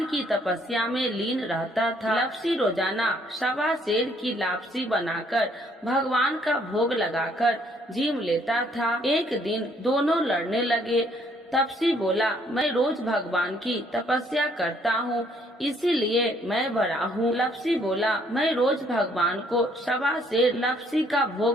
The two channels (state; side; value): normal; both; correlation 0.65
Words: की तपस्या में लीन रहता था। लपसी रोजाना 1.25 सेर की लापसी बनाकर भगवान का भोग लगाकर जीम लेता था। एक दिन दोनों लड़ने लगे। तपसी बोला, मैं रोज भगवान की तपस्या करता हूँ, इसीलिए मैं बड़ा हूँ। लपसी बोला, मैं रोज भगवान को 1.25 सेर लपसी का